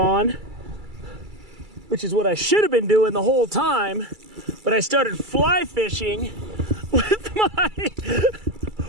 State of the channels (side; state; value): left; late; 2.3 ms